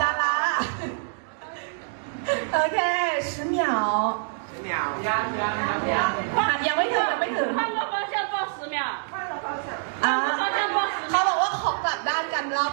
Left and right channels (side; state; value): left; silent; digital silence